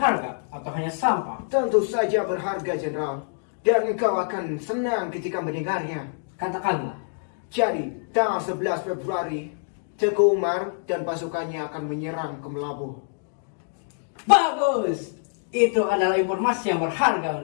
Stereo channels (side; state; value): right; silent; digital silence